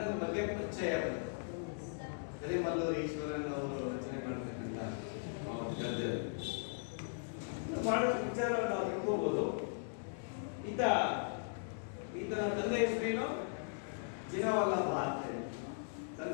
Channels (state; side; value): silent; right; digital silence